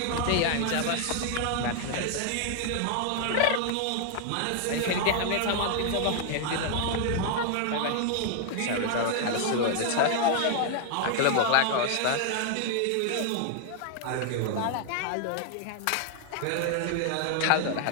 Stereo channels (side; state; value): both; different; correlation 0.00